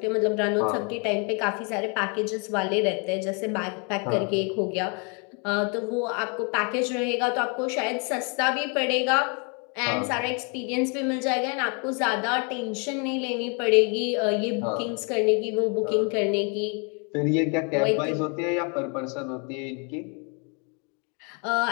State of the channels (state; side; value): quieter; right; 35.4 dB